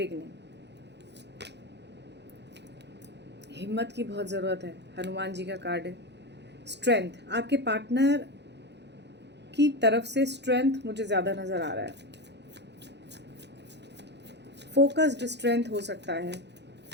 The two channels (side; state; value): left; late; 0.50 ms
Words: हिम्मत की बहुत ज़रूरत है, हनुमान जी का कार्ड है। स्ट्रेंथ, आपके पार्टनर की तरफ से स्ट्रेंथ मुझे ज़्यादा नज़र आ रहा है। फोकस्ड स्ट्रेंथ हो सकता है,